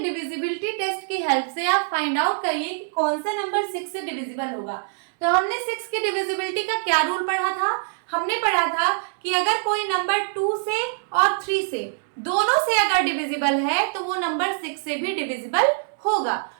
डिविजिबिलिटी टेस्ट की हेल्प से आप फाइंड आउट करिए कि कौन सा नंबर 6 से डिविजिबल होगा। तो हमने 6 की डिविजिबिलिटी का क्या रूल पढ़ा था, हमने पढ़ा था कि अगर कोई नंबर 2 से और 3 से दोनों से अगर डिविजिबल है तो वो नंबर 6 से भी डिविजिबल होगा।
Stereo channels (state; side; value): silent; left; digital silence